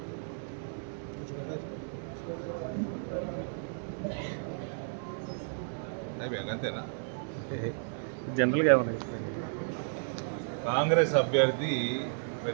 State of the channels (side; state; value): left; silent; digital silence